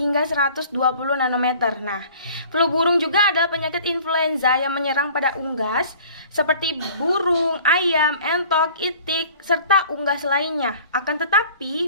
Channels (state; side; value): inverted; both; correlation -0.48